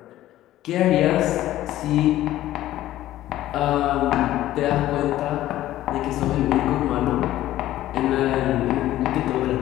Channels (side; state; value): right; quieter; 14.3 dB